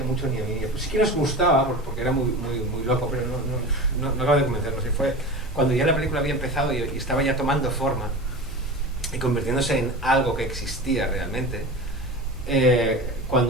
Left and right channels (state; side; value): normal; both; correlation 0.31